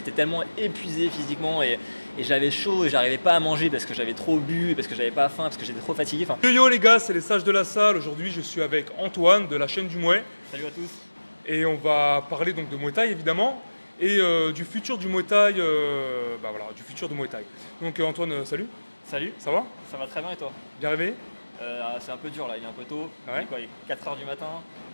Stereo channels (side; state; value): both; inverted; correlation -1.00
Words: tellement épuisé physiquement et j'avais chaud et j'arrivais pas à manger parce que j'avais trop bu, parce que j'avais pas faim, parce que j'étais trop fatigué. Enfin... Yo les gars, c'est les sages de la salle. Aujourd'hui je suis avec Antoine de la chaîne du Muay. Salut à tous. Et on va parler donc de Muay Thai évidemment. Et du futur du Muay Thai, du futur de Muay Thai. Donc Antoine, salut. Salut. Ça va? Ça va très bien et toi? Bien réveillé? C'est un peu dur là, il est un peu tôt. Ah ouais? Quoi, il est 4h du matin.